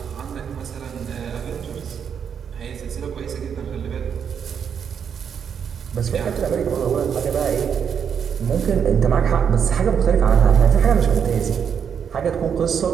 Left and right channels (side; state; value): left; quieter; 7.5 dB